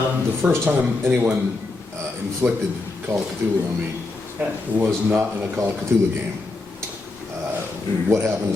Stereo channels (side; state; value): right; quieter; 3.3 dB